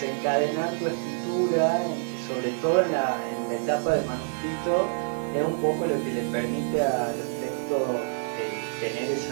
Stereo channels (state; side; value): silent; left; digital silence